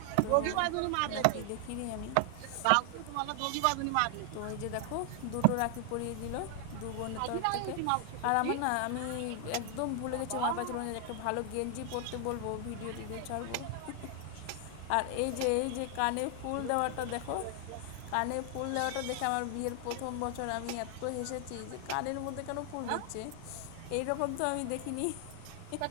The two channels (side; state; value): both; different; correlation 0.00